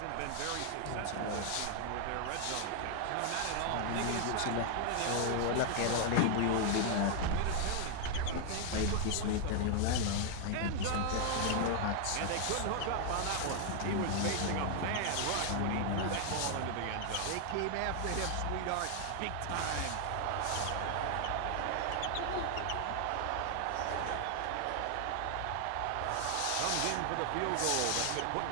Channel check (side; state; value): both; different; correlation 0.00